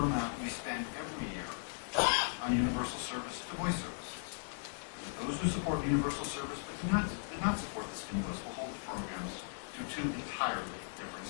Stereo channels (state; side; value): silent; right; 53 dB below the other